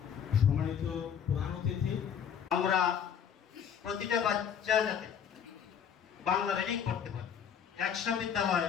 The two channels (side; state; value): right; quieter; 8.1 dB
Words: সম্মানিত প্রধান অতিথি, আমরা প্রতিটা বাচ্চা যাতে বাংলা রিডিং করতে পারে, 100 বিদ্যালয়